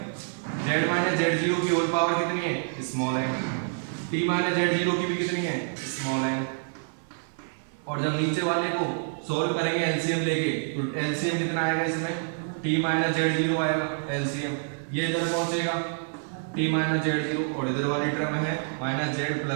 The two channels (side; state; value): left; silent; digital silence